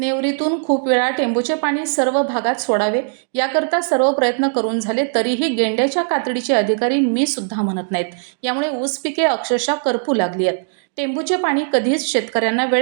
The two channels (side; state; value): left; silent; digital silence